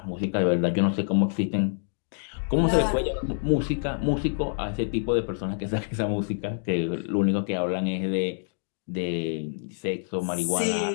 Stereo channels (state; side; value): silent; right; digital silence